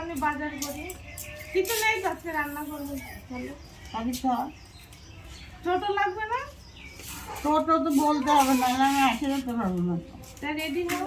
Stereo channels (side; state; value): both; identical; correlation 1.00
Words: বাজার করি। কিছু নেই তো আজকে রান্না করবো। চলো আমি তো ছোট লাগবে না? টোটো তো বলতে হবে না, আমি আসে যেতে পারবো না। তা রেডি